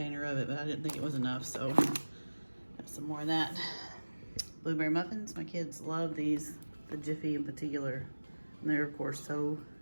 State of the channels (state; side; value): inverted; both; correlation -1.00